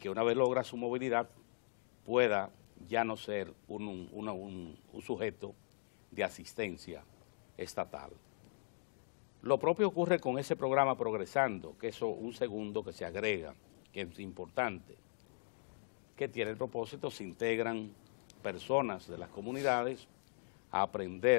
una vez logra su movilidad pueda ya no ser un sujeto de asistencia estatal. Lo propio ocurre con ese programa Progresando, que es un segundo que se agrega, que es importante, que tiene el propósito, se integran personas de las comunidades a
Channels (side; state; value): right; silent; digital silence